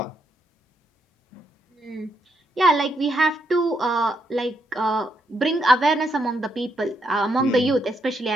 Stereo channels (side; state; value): both; normal; correlation 0.78